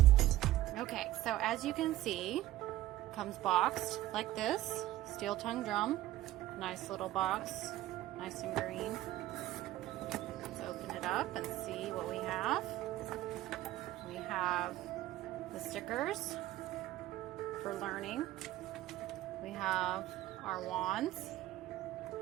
Okay, so as you can see, it comes boxed like this, steel tongue drum. Nice little box, nice and green. Let's open it up and see what we have. We have the stickers for learning. We have our wands.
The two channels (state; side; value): quieter; left; 15.2 dB